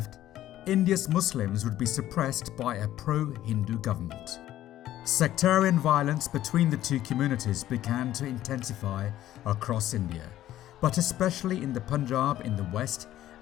India's Muslims would be suppressed by a pro-Hindu government. Sectarian violence between the two communities began to intensify across India, but especially in the Punjab in the west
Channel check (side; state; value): right; quieter; 13.3 dB